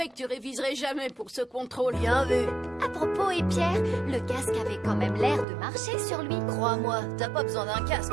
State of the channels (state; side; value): drops out; left; at 5.5 s